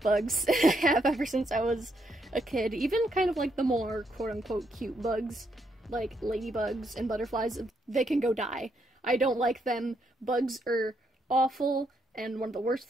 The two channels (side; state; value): both; normal; correlation 0.76